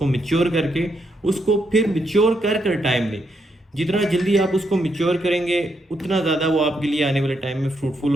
मिच्योर करके उसको फिर मिच्योर कर कर टाइम दें। जितना जल्दी आप उसको मिच्योर करेंगे उतना ज़्यादा वो आपके लिए आने वाले टाइम में फ्रूटफुल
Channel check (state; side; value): normal; both; correlation 0.79